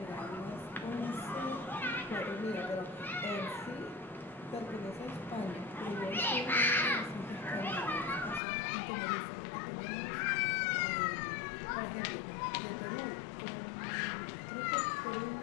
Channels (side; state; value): right; drops out; at 8.4 s